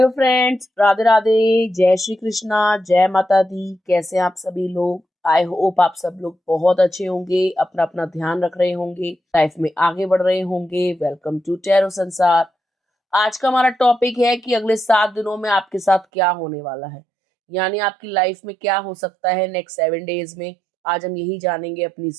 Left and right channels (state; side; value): drops out; left; at 16.1 s